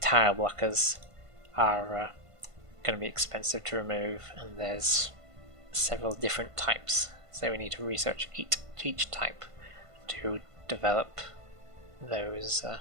blockers are going to be expensive to remove, and there's several different types, so we need to research each type to develop those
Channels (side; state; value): left; late; 1.5 ms